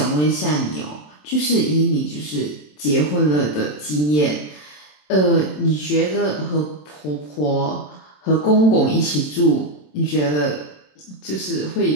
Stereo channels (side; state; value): right; late; 27 ms